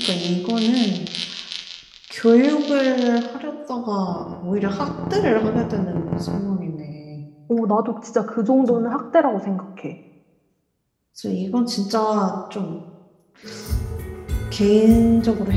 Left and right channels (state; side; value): identical; both; correlation 1.00